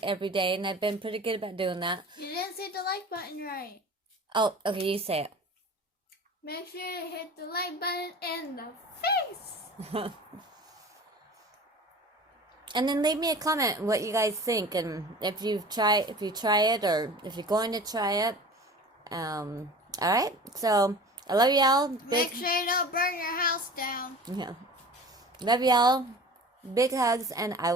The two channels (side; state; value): both; normal; correlation 0.39